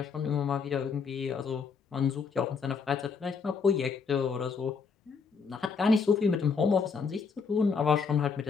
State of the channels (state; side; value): quieter; right; 5.4 dB